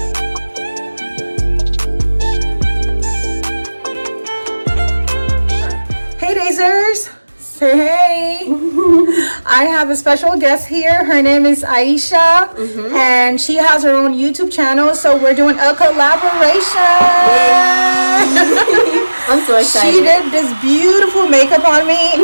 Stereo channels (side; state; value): both; inverted; correlation -1.00